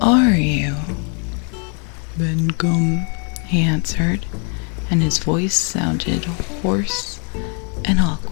are you?" "Ben Gum," he answered, and his voice sounded hoarse and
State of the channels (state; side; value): quieter; right; 39.0 dB